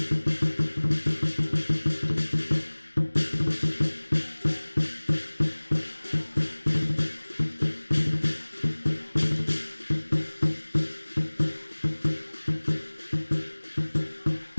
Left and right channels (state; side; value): inverted; both; correlation -1.00